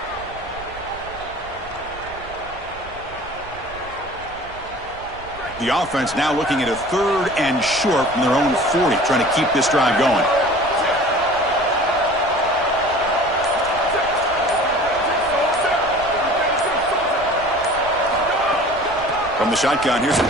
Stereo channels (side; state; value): right; noise; rumble, 18 dB below the sound